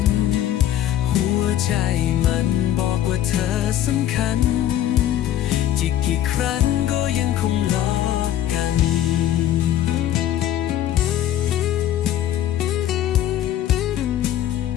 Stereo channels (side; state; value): right; quieter; 11.8 dB